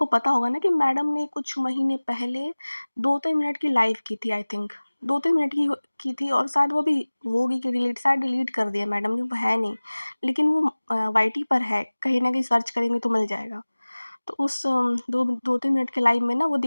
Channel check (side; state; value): both; inverted; correlation -1.00